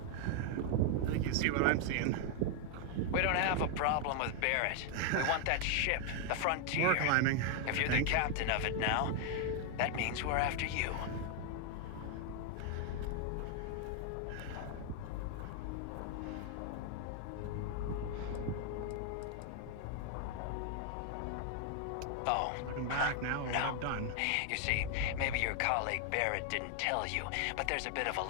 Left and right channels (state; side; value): different; both; correlation 0.00